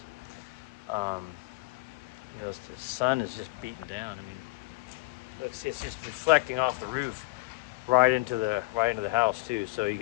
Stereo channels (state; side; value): quieter; right; 23.3 dB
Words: you know, the sun is just beating down. I mean, it's just reflecting off the roof right into the house too. So you